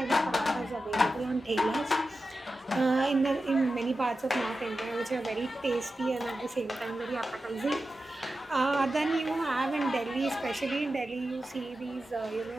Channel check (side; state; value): both; normal; correlation 0.92